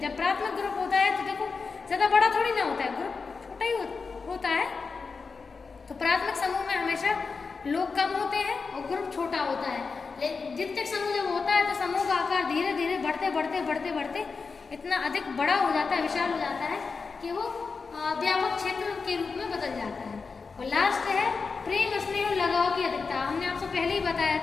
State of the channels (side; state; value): right; quieter; 4.8 dB